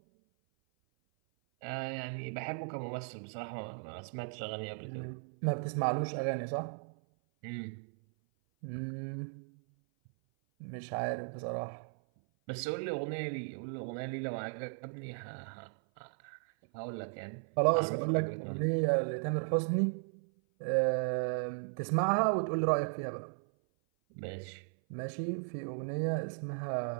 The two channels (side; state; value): left; silent; 54 dB below the other